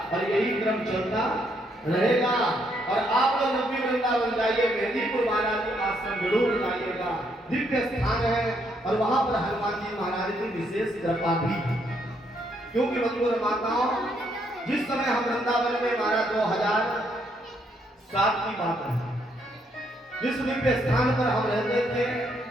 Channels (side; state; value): both; normal; correlation 0.73